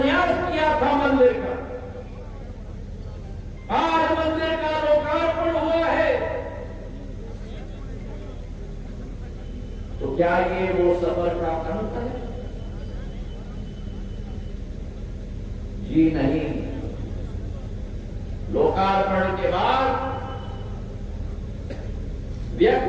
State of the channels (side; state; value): both; identical; correlation 1.00